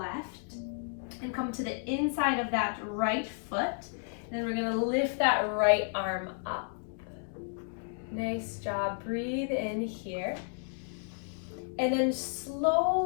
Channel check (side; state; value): right; silent; 56 dB below the other